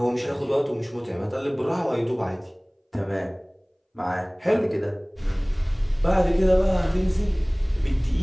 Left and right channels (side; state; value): both; identical; correlation 1.00